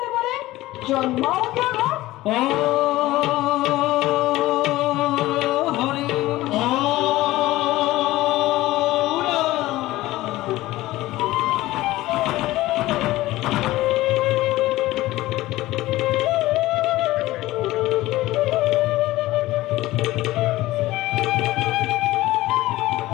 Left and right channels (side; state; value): right; quieter; 17.3 dB